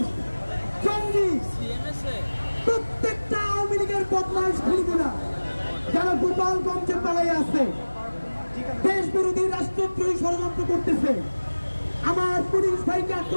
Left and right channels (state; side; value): inverted; both; correlation -1.00